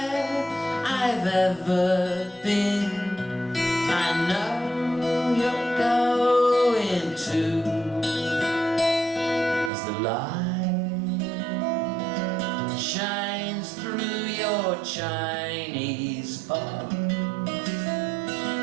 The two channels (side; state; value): left; drops out; at 9.7 s